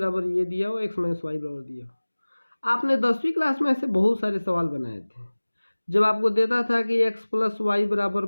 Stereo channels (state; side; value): inverted; both; correlation -1.00